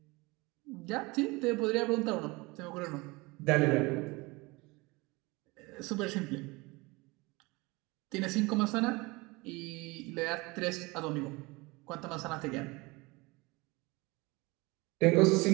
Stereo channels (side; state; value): left; quieter; 24.2 dB